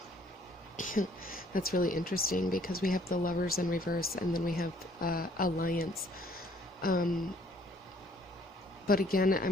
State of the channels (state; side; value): normal; both; correlation 0.61